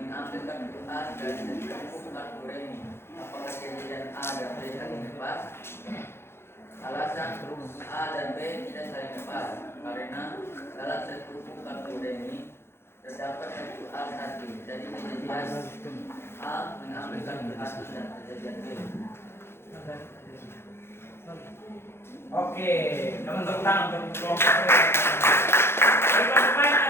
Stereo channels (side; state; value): right; late; 0.12 ms